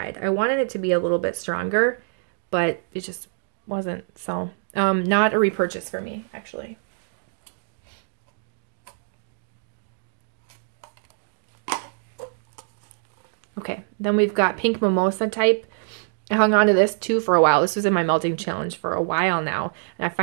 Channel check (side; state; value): left; silent; digital silence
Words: I wanted it to be a little bit stronger, but it just wasn't. So, not a repurchase for me, actually. Okay, then we've got Pink Mimosa type. I hung on to this too for a while. This was in my melting challenge for a while now, and I